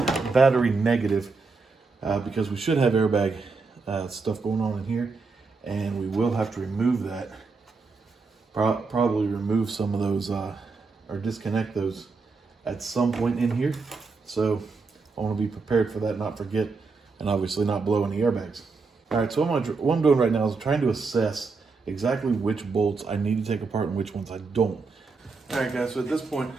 battery negative because we should have airbag stuff going on in here, and we will have to remove that. Probably remove some of those or disconnect those at some point in here. So I want to be prepared for that, not forget, and obviously not blow any airbags. All right, so what I'm doing right now is trying to assess exactly which bolts I need to take apart and which ones I don't. All right, guys, so at this point,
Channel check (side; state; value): left; quieter; 4.3 dB